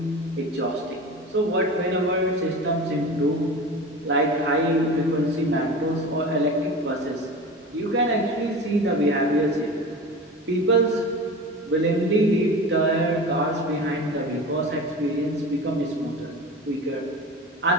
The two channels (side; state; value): both; normal; correlation 0.33